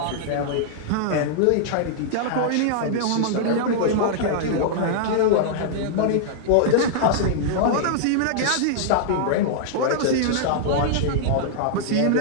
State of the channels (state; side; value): different; both; correlation -0.01